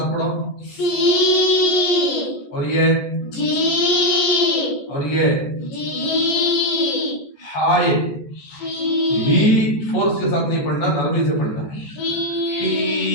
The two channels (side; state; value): right; late; 14 ms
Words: पढ़ो। सी और ये जी। और ये जी। हाय ही फोर्स के साथ नहीं पढ़ना, नरमी से पढ़ना है। ही